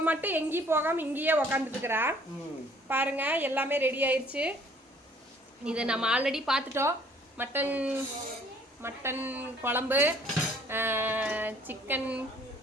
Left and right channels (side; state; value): both; normal; correlation 0.57